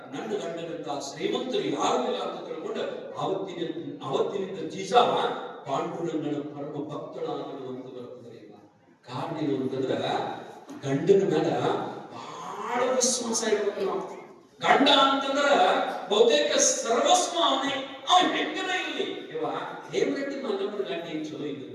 ನನ್ನ ಗಂಡನಂತ ಶ್ರೀಮಂತರು ಯಾರು ಇಲ್ಲ ಅಂತ ತಿಳ್ಕೊಂಡು ಅವತ್ತಿನಿಂದ ಜೀಸ ಪಾಂಡುರಂಗನ ಪರಮ ಭಕ್ತಳಾಗುವಂತ ಬರ್ತದೆ ಕಾರಣ ಏನು ಅಂತಂದ್ರ ಗಂಡನ ಮೇಲೆ ಬಹಳ ವಿಶ್ವಾಸ ಇರ್ಬೇಕು ನಾವು ಗಂಡ ಅಂತಂದ್ರ ಬಹುತೇಕ ಸರ್ವಸ್ವ ಅವನೇ ಅವ ಹೆಂಗನ ಇರಲಿ ಇವ ಹೇಮರೆಡ್ಡಿ ಮಲ್ಲಮ್ಮನ ಗಂಡ ಏನ್ ಚಲೋ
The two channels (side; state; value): both; identical; correlation 1.00